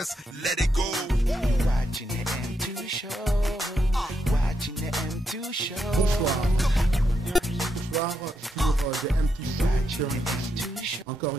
let it go. Watching the M2 Show. Watching the M2 Show. Bonsoir. Bonsoir sur The M2 Show. Encore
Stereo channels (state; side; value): normal; both; correlation 0.82